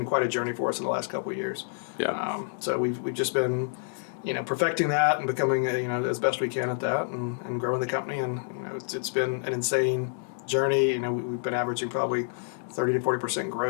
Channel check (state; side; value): silent; right; 59 dB below the other